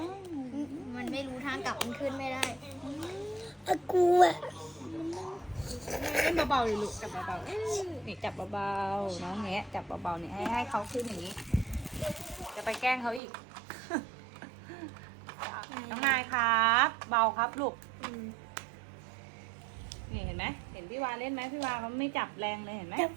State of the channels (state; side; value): drops out; left; at 13.2 s